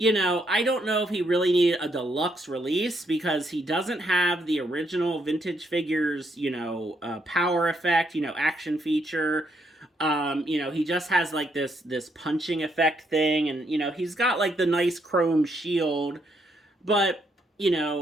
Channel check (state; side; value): normal; both; correlation 0.75